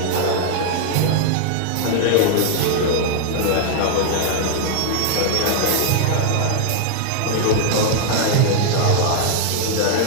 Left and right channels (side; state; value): both; different; correlation 0.00